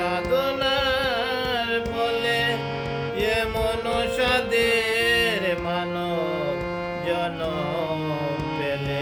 ফলে এমন সাদের মানব জনম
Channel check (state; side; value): identical; both; correlation 1.00